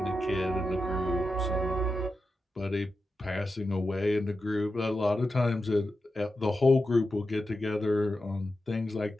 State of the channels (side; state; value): both; normal; correlation 0.90